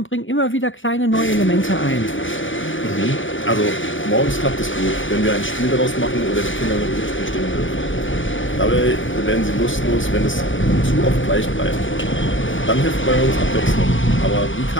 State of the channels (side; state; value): right; late; 0.57 ms